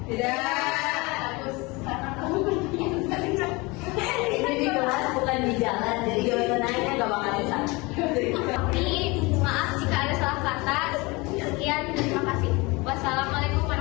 Tidak. Bagus, karena kamu bertanya. Ini di kelas bukan di jalan, jadi jawaban nanya gak bakal susah. Tapi maaf jika ada salah kata. Sekian, terima kasih. Wassalamualaikum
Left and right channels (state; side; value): quieter; right; 25.0 dB